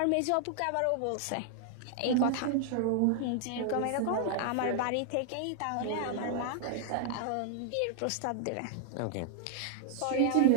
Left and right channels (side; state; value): both; different; correlation 0.00